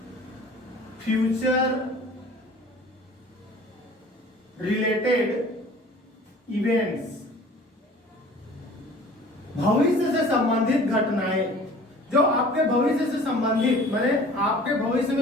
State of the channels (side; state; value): both; normal; correlation 0.47